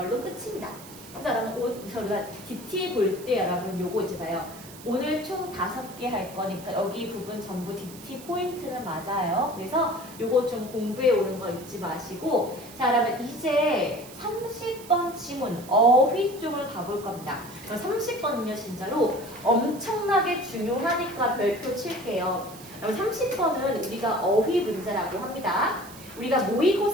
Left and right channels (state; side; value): noise; right; hiss, 17 dB below the sound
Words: 끝입니다. 그래서 여러분 우리가 DT 볼 때 여러분 요거 이제 봐요. 오늘 총 5개 할 거니까 여기 부분 전부 DT 포인트는 맞아요. 그래서 요거 좀 공부해 오는 거 잊지 마시고 자 그러면 이제 30번 지문 어휘 쪽을 가볼 겁니다. 30번은요 진짜로 엄청나게 중요하니까 별표 칠게요. 그럼 30번은 우리가 어휘 문제라고 합니다. 우리가